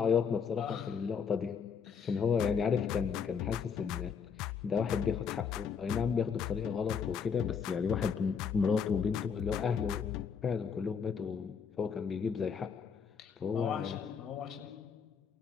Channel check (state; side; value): quieter; right; 6.4 dB